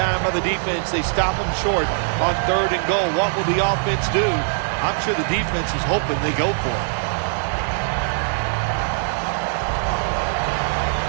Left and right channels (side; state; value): left; silent; digital silence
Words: by the defense. They stop them short on 3rd and goal. What will the offense do? I'm sure the defense is hoping they go for it.